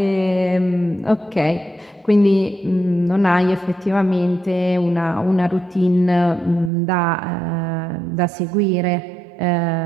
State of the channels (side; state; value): left; drops out; at 6.7 s